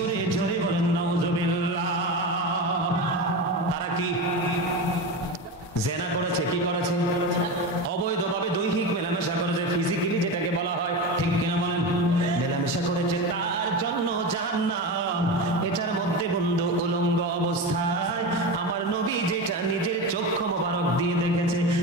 জোরে বলেন নাউজুবিল্লাহ। তারা কি জেনা করেছে? কি করেছে? অবৈধভাবে দৈহিক মেলামেশা করেছে, ফিজিক্যালি যেটাকে বলা হয়, ঠিক কিনা বলেন? মেলামেশা করেছে, তার জন্য জাহান্নাম। এটার মধ্যে বন্ধু উলঙ্গ অবস্থায় আমার নবী যেটা নিজের চক্ষু মোবারক দিয়ে দেখেছে।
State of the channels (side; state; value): both; normal; correlation 0.22